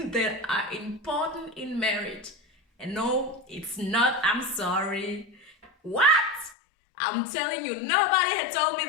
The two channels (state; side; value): drops out; right; at 6.6 s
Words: are important in marriage. And no, it's not I'm sorry. What? I'm telling you, nobody had told me